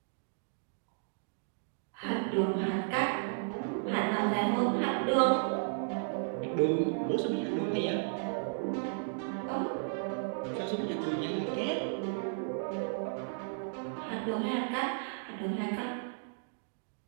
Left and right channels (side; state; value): left; silent; digital silence